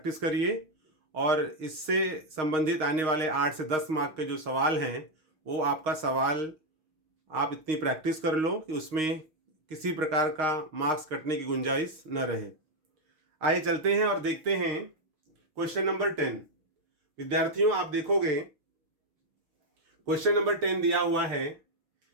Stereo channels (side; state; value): left; late; 6.4 ms